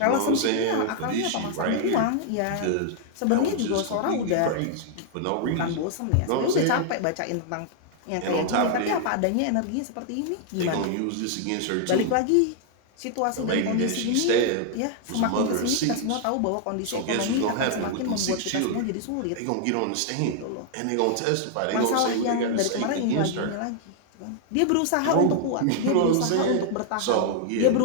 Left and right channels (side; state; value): both; different; correlation 0.00